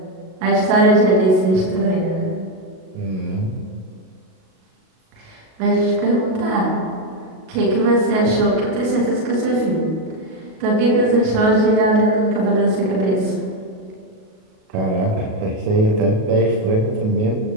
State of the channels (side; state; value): left; late; 37 ms